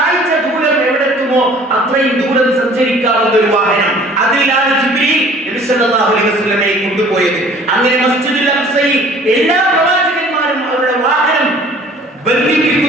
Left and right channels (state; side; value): normal; both; correlation 0.51